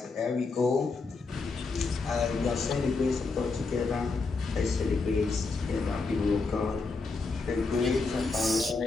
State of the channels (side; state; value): right; quieter; 4.1 dB